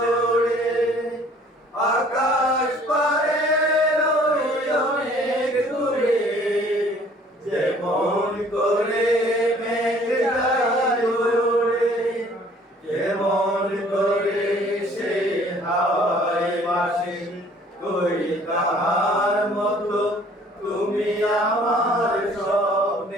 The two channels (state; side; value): normal; both; correlation 0.55